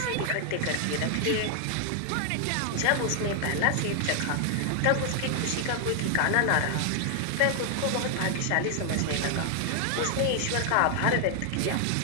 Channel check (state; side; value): different; both; correlation 0.00